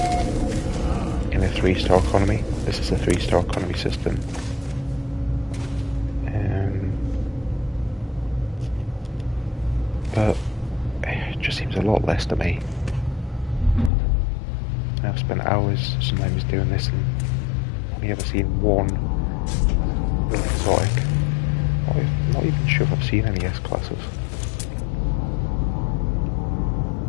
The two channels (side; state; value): right; drops out; at 13.9 s